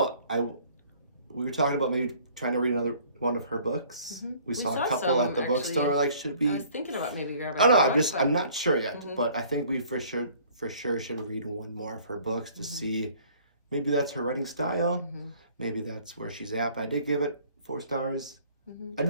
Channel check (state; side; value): inverted; both; correlation -0.55